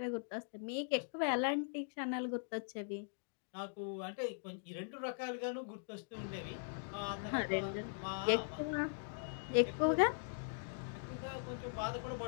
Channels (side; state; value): right; silent; digital silence